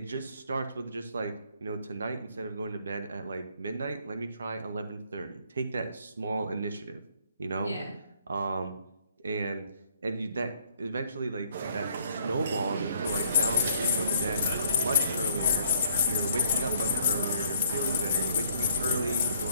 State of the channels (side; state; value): both; inverted; correlation -0.62